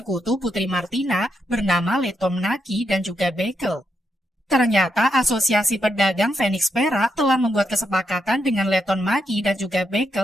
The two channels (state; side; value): normal; both; correlation 0.82